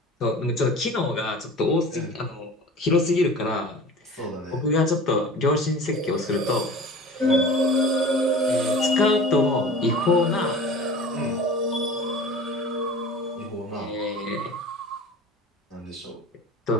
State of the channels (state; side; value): normal; both; correlation 0.39